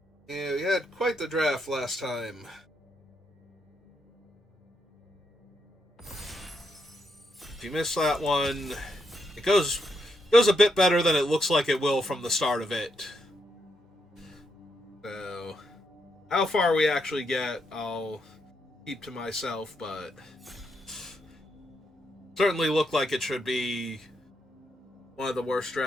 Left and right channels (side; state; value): both; normal; correlation 0.80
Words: Yeah, we had quite the draft last time. If you missed that one, it goes a bit better than it looks like it will from the start of it. So, how far we actually get, I'll keep to myself, but certainly looked like it should be one of the worst